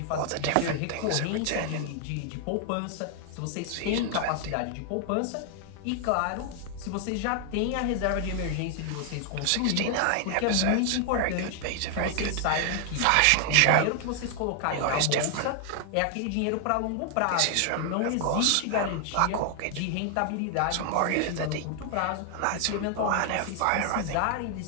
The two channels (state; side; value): different; both; correlation 0.00